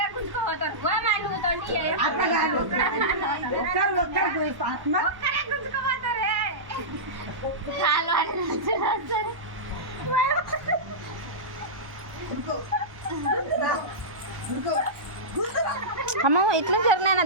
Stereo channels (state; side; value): late; left; 1.1 ms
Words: అట్లా కాదు ఒక్కరు ఆత్మ అమ్మ ఇట్లా జరిగినా